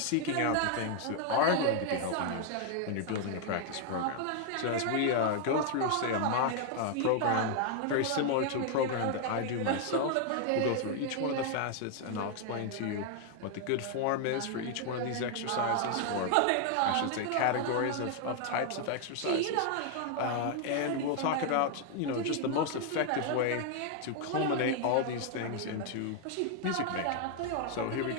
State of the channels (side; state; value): both; different; correlation 0.00